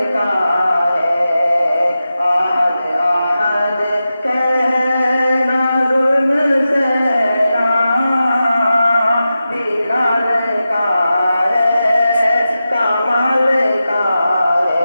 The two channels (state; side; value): inverted; both; correlation -0.92